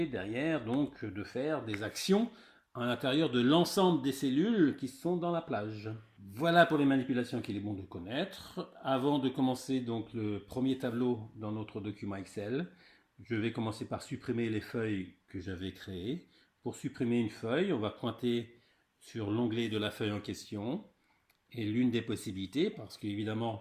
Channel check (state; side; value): identical; both; correlation 1.00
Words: derrière donc de faire des actions à l'intérieur de l'ensemble des cellules qui sont dans la plage. Voilà pour les manipulations qu'il est bon de connaître. Avant de commencer donc le premier tableau dans notre document Excel, je vais commencer par supprimer les feuilles que j'avais créées. Pour supprimer une feuille, on va pointer sur l'onglet de la feuille en question. Et l'une des possibilités, parce qu'évidemment